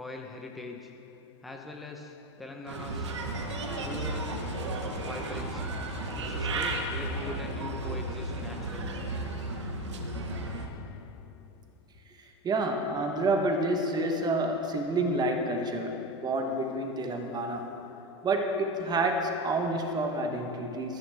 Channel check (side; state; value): both; normal; correlation 0.23